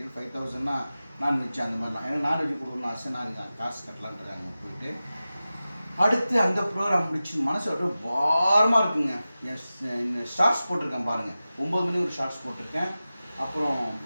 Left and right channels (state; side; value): inverted; both; correlation -0.95